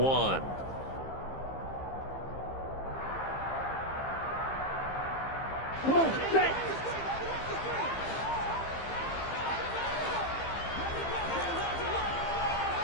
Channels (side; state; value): right; late; 15 ms